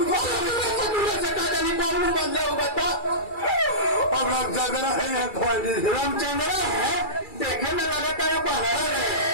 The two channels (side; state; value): right; late; 2.3 ms